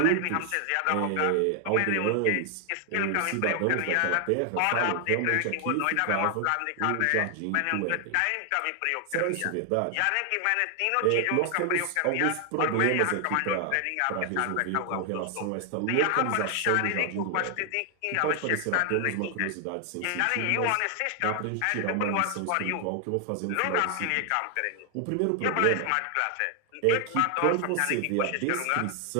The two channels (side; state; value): both; different; correlation 0.00